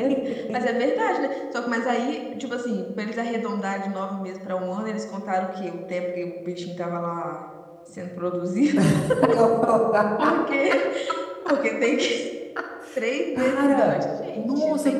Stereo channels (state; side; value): identical; both; correlation 1.00